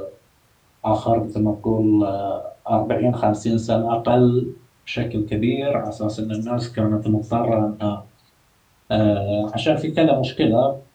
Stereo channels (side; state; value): both; identical; correlation 1.00